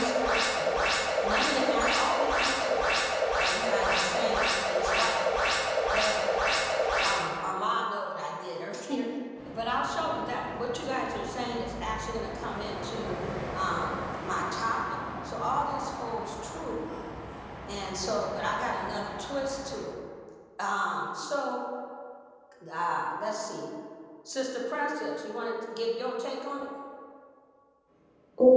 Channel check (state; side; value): identical; both; correlation 1.00